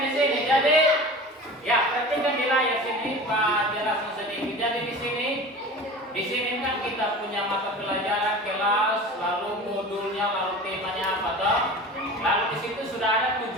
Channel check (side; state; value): both; normal; correlation 0.36